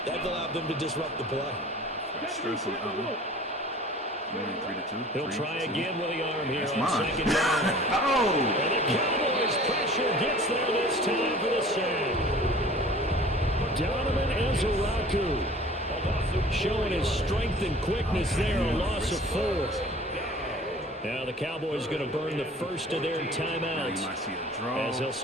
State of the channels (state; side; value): normal; both; correlation 0.46